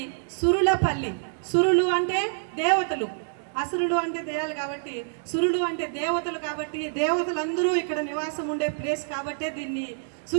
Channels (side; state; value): left; silent; digital silence